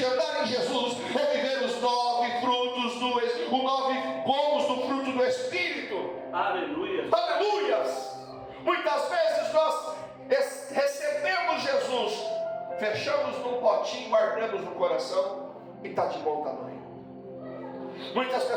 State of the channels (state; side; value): identical; both; correlation 1.00